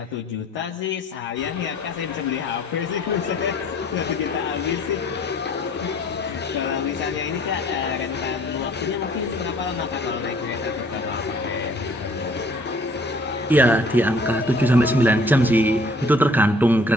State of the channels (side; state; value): both; normal; correlation 0.55